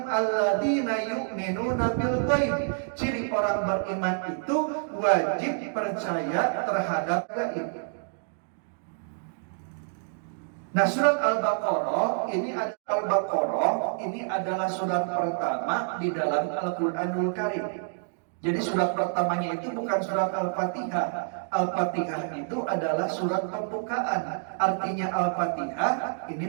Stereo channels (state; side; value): silent; left; digital silence